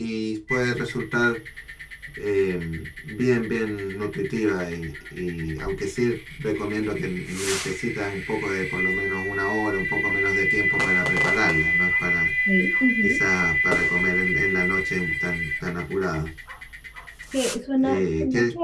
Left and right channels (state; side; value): identical; both; correlation 1.00